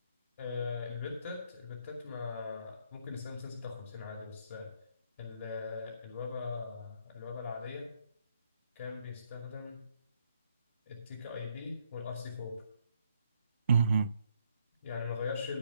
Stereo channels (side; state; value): both; inverted; correlation -0.71